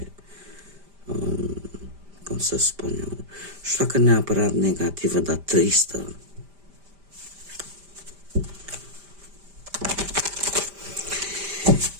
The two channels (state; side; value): late; left; 5.0 ms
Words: cum să spun eu... Nu știu dacă neapărat negativă, dar tristă.